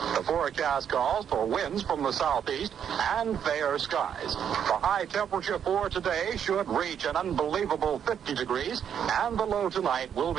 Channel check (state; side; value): quieter; left; 8.5 dB